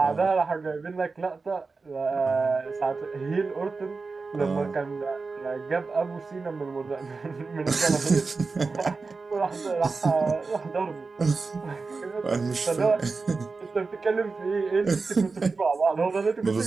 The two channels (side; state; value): left; quieter; 4.2 dB